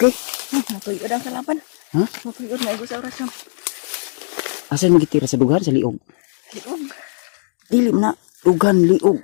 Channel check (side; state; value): right; silent; digital silence